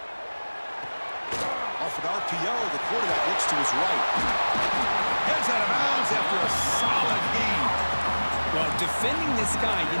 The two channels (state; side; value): inverted; both; correlation -1.00